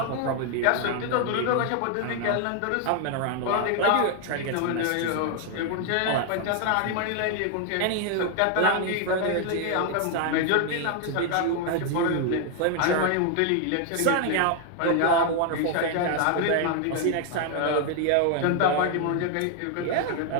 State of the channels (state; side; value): different; both; correlation 0.01